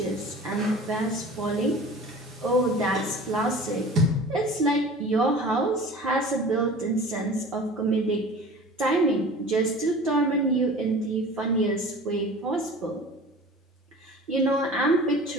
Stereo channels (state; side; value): normal; both; correlation 0.41